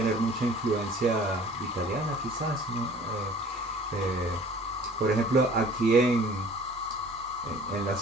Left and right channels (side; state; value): both; normal; correlation 0.49